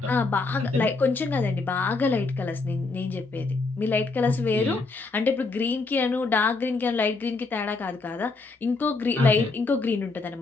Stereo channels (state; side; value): quieter; right; 3.8 dB